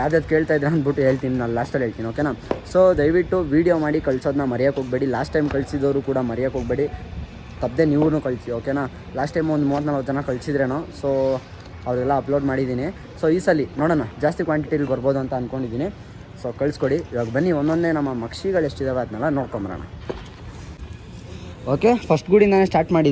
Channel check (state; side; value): identical; both; correlation 1.00